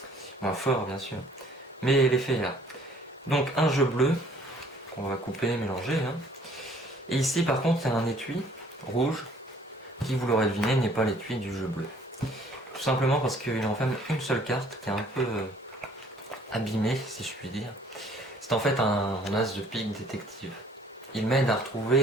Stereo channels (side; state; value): both; normal; correlation 0.57